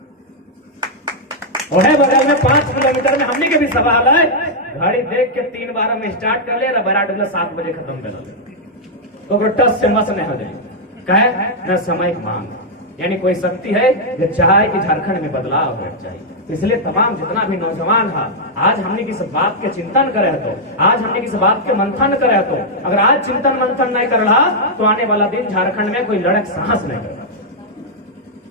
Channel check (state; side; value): normal; both; correlation -0.05